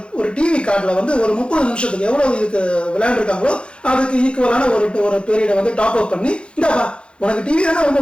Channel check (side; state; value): right; late; 0.056 ms